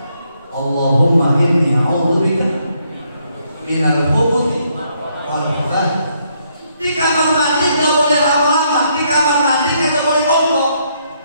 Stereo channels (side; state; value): both; inverted; correlation -0.73